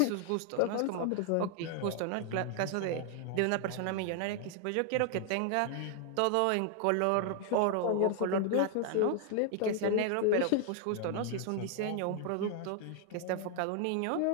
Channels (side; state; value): both; different; correlation 0.00